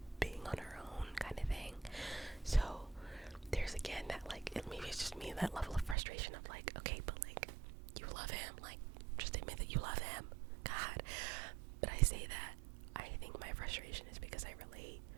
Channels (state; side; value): drops out; left; at 6.0 s